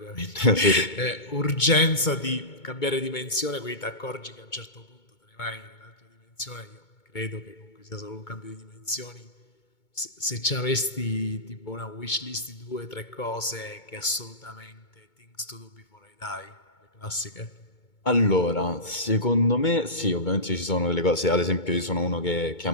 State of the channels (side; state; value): right; late; 2.2 ms